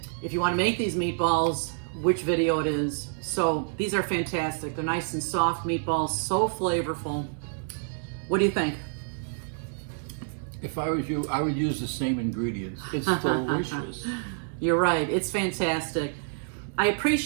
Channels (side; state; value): left; silent; digital silence